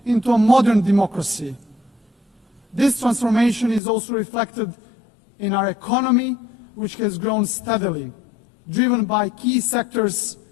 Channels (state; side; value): drops out; right; at 3.8 s